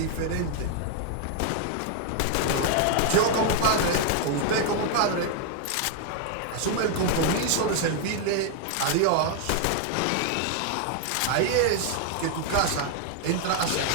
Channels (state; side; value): different; both; correlation 0.00